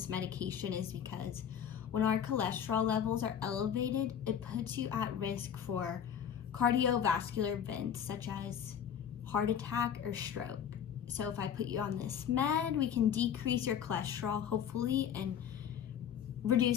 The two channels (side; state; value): right; quieter; 8.7 dB